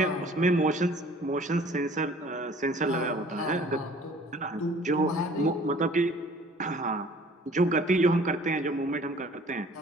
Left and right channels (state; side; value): normal; both; correlation 0.52